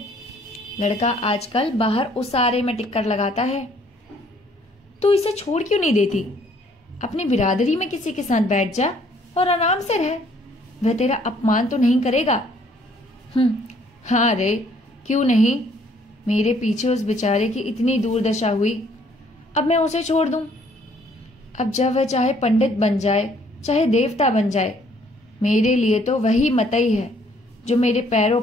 लड़का आजकल बाहर उसारे में टिक्कर लगाता है। तू इसे छोड़ क्यों नहीं देती? अपनी बिरादरी में किसी के साथ बैठ जा और आराम से रह। वह तेरा अपमान तो नहीं करेगा। हाँ रे, क्यों नहीं? मेरे पीछे उस बेचारे की इतनी दुर्दशा हुई, अब मैं उसे छोड़ दूं? अब जब वह चाहे पंडित बन जाए चाहे देवता बन जाए, मेरे लिए तो वही मतई है जो मेरे पैरों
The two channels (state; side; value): normal; both; correlation 0.63